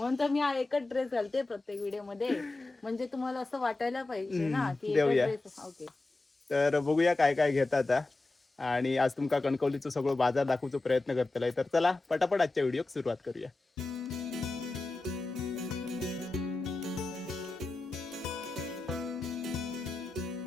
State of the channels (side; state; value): right; quieter; 3.2 dB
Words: तर मी हा एकच ड्रेस घालते प्रत्येक व्हिडिओ मध्ये, म्हणजे तुम्हाला असं वाटायला पाहिजे ना की एकच देऊया. ड्रेस. ओके. तर बघूया काय काय घेता आता. आणि आज तुमका कणकवलीचं सगळं बाजार दाखवण्याचा प्रयत्न करतलाय. तर चला पटापट आजच्या व्हिडिओक सुरुवात करूया.